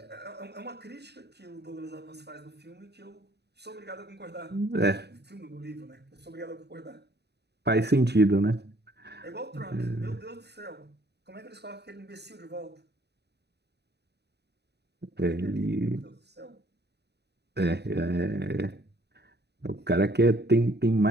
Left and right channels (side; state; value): left; late; 0.48 ms